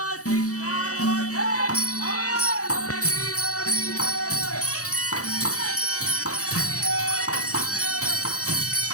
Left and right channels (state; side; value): late; right; 0.66 ms